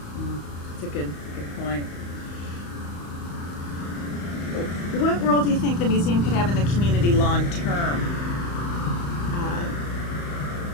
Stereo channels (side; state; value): right; late; 35 ms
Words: It's a good point. What role do you think the museum could have in the community long term?